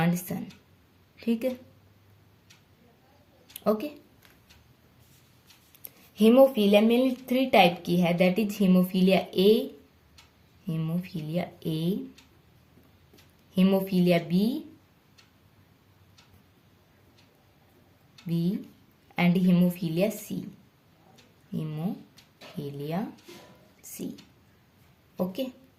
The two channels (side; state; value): both; identical; correlation 1.00